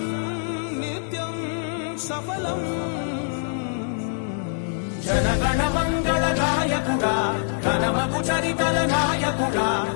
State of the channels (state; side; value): silent; right; digital silence